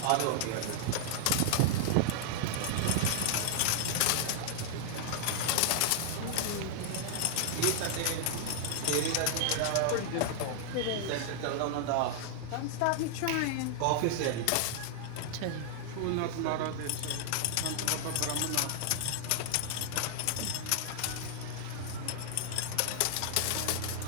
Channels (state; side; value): different; both; correlation -0.01